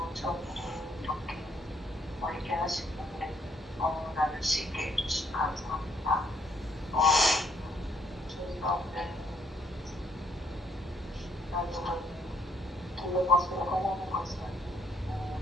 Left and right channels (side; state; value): both; normal; correlation 0.69